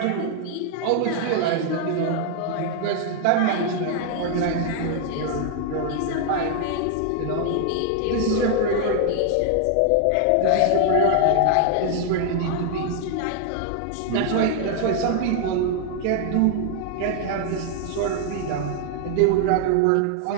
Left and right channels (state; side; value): different; both; correlation 0.00